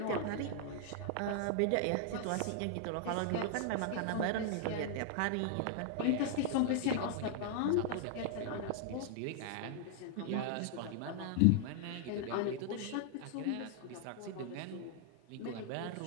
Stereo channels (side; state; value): both; different; correlation 0.00